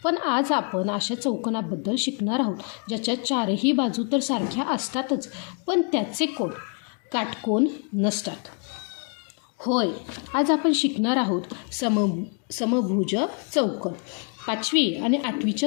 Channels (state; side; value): quieter; right; 39.3 dB